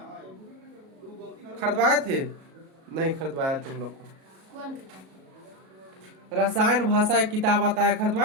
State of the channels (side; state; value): left; late; 37 ms